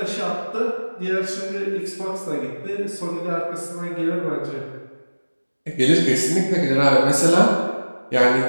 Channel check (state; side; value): inverted; both; correlation -1.00